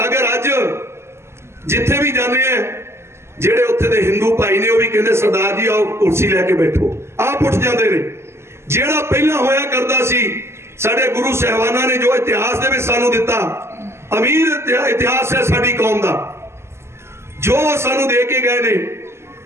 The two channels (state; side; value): late; left; 0.13 ms